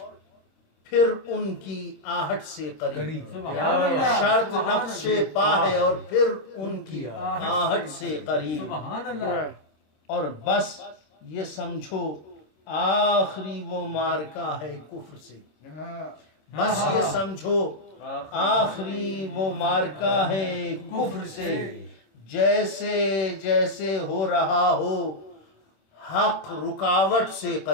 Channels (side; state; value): right; late; 26 ms